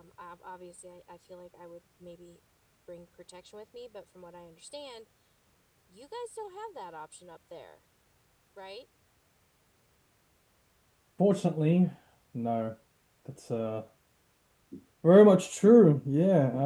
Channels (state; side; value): identical; both; correlation 1.00